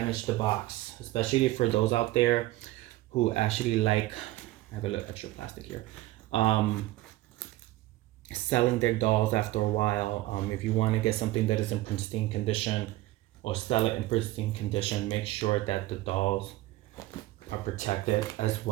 the box, especially for those out there who actually like, I have a little extra plastic here, selling their dolls after a while. If you want to get something that is in pristine condition or sell it in pristine condition, make sure that the dolls are protected as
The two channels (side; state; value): left; quieter; 17.2 dB